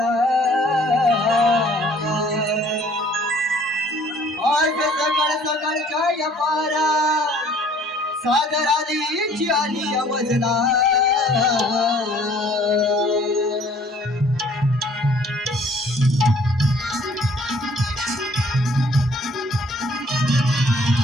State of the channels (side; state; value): both; normal; correlation 0.57